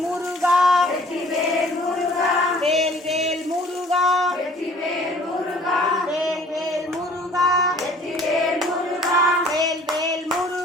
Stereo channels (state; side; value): normal; both; correlation 0.52